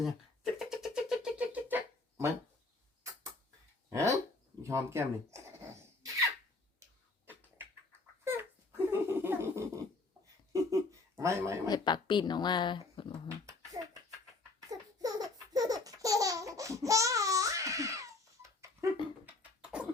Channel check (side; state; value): right; quieter; 3.4 dB